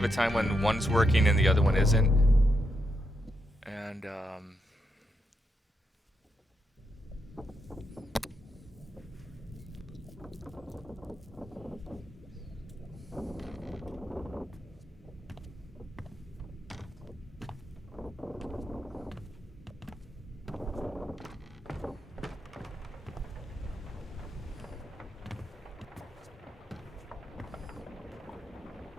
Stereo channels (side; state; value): both; normal; correlation 0.82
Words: a time when one's working and the other one isn't. And